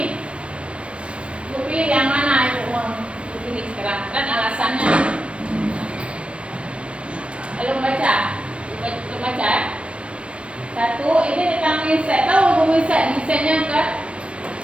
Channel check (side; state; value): left; late; 0.060 ms